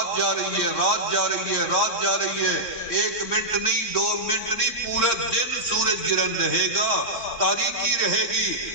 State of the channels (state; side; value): late; right; 3.6 ms